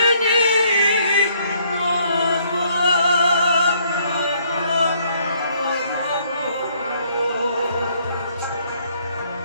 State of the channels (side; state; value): both; inverted; correlation -0.66